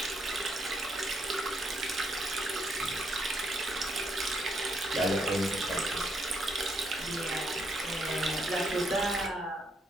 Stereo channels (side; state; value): both; normal; correlation 0.74